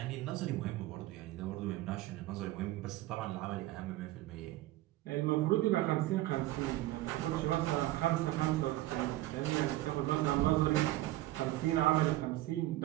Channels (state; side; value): quieter; left; 16.5 dB